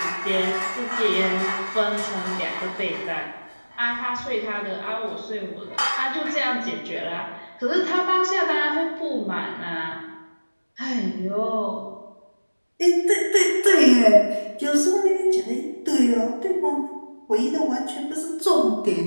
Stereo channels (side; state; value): both; inverted; correlation -1.00